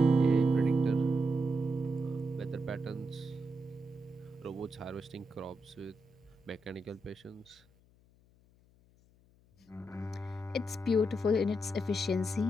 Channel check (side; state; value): left; noise; hum, 30 dB below the sound